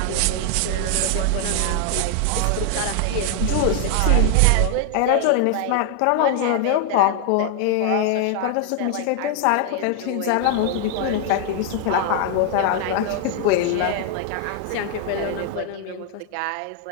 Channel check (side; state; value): both; different; correlation 0.00